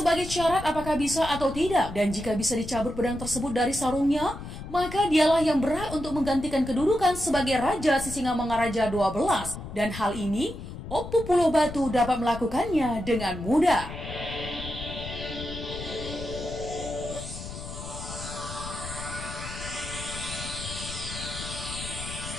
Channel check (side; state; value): left; noise; rumble, 10 dB below the sound